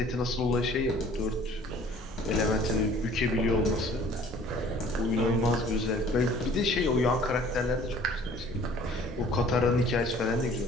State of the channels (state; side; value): normal; both; correlation 0.52